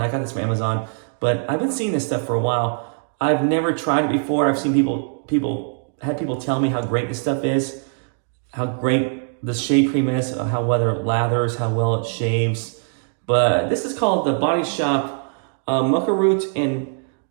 I got this from Amazon, but I've been seeing this stuff for a while. I've never tried it before. I've seen people tell me how great this stuff is, how great the shave cream is, how well it lathers, how well it shaves. But this is called the Body Shop Maca Root and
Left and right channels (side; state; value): left; silent; digital silence